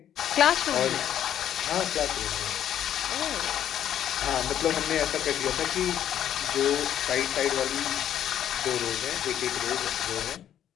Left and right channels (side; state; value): right; quieter; 10.5 dB